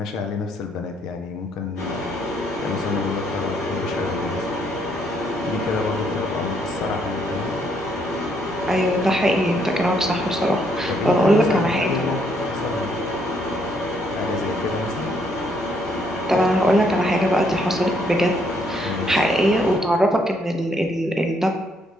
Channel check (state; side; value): normal; both; correlation 0.71